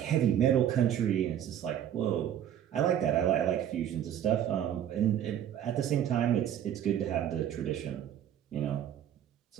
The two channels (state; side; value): quieter; left; 10.3 dB